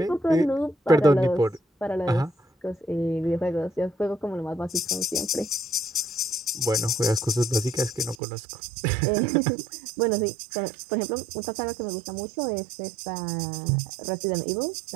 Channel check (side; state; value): left; drops out; at 8.2 s